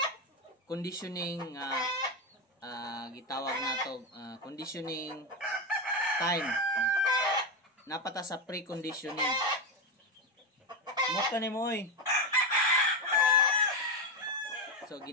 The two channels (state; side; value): normal; both; correlation 0.11